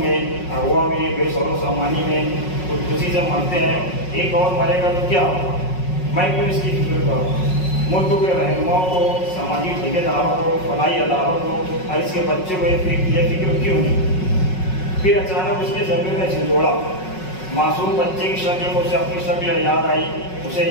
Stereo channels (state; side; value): late; right; 5.4 ms